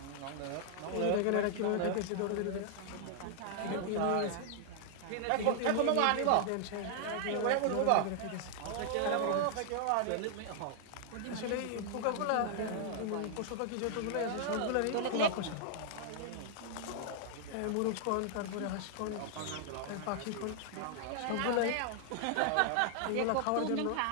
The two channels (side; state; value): both; different; correlation -0.01